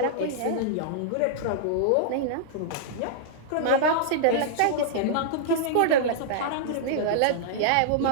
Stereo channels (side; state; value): both; different; correlation -0.01